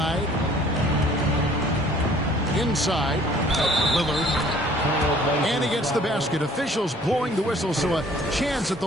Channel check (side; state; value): both; normal; correlation 0.55